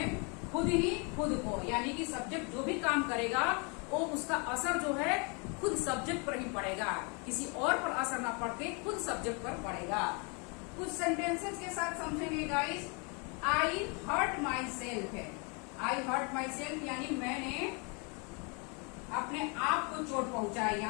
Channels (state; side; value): quieter; right; 33.3 dB